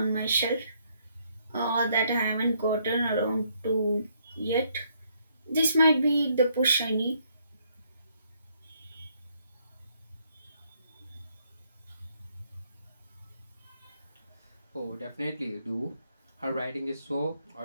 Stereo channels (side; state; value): both; inverted; correlation -0.71